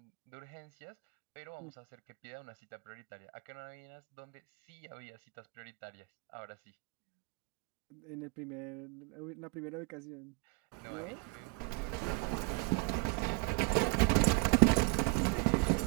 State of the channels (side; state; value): left; quieter; 28.7 dB